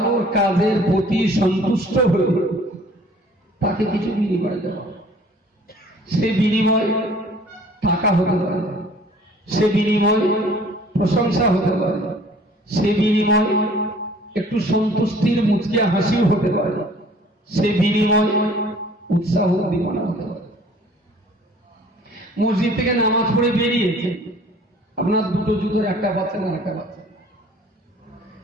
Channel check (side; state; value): both; normal; correlation 0.52